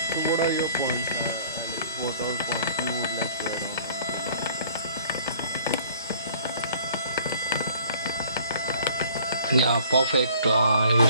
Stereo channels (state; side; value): inverted; both; correlation -0.54